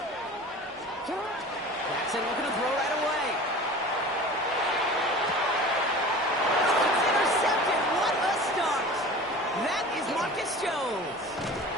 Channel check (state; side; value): normal; both; correlation 0.38